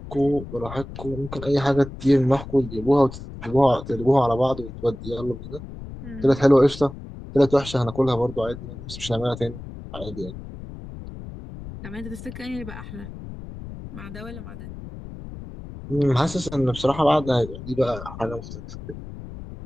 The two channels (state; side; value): noise; left; rumble, 12 dB below the sound